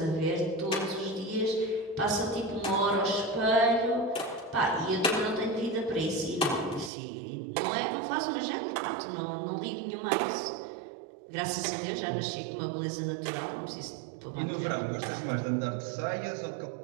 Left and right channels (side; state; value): left; drops out; at 6.9 s